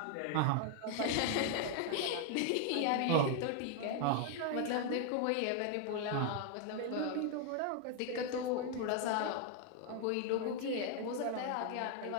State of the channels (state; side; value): different; both; correlation 0.00